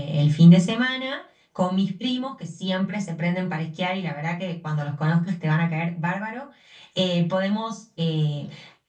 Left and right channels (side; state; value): both; identical; correlation 1.00